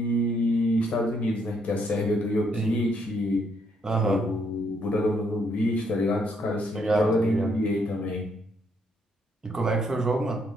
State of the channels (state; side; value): normal; both; correlation 0.72